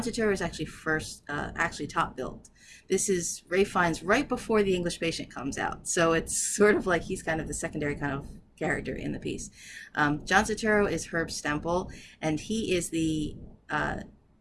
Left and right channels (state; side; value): identical; both; correlation 1.00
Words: Turturro is actually actually top billed. This is Ray Fiennes right before The English Patient comes out, so it's sort of like he's kind of the secondary kind of character in the piece. John Turturro is Herb Stempel, and he's a